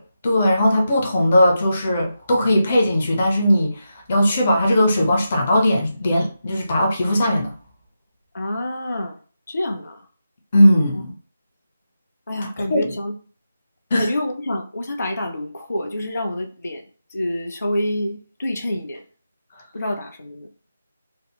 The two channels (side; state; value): both; inverted; correlation -0.89